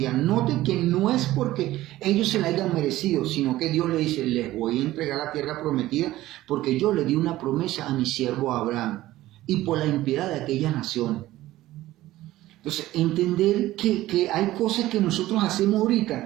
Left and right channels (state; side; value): quieter; left; 15.9 dB